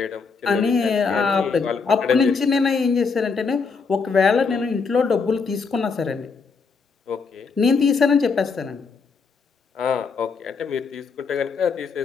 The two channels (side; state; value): right; quieter; 5.0 dB